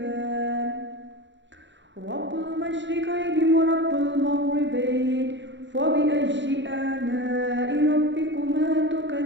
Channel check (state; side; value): late; left; 0.53 ms